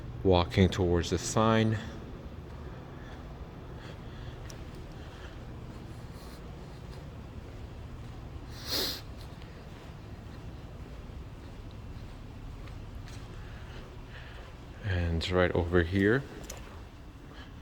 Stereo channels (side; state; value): both; identical; correlation 1.00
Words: walking towards the sign. And right over here,